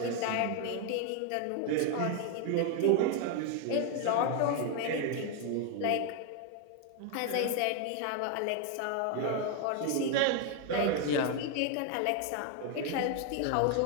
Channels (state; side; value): different; both; correlation 0.01